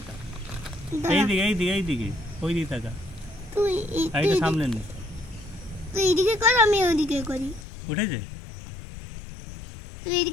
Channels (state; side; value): drops out; right; at 7.7 s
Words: এইদিকে এইদিকে এইদিকে ওইদিকে তাকা, তুই আর এটা সামনে নে। তুই এদিকে কর, আমি ওইদিকে করি। উঠেছে? তুই